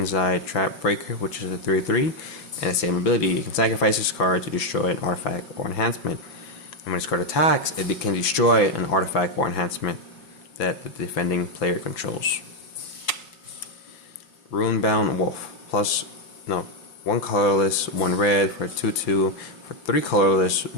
Trap Breaker, which is a 3/3, and the same ability. You can sacrifice this card to destroy an artifact or enhancement. And when this card attacks, it can destroy an artifact or enhancement that the defending player controls. Runebound Wolf 1 colorless, 1 red for 2/2 for 3 colorless,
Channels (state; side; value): late; right; 5.9 ms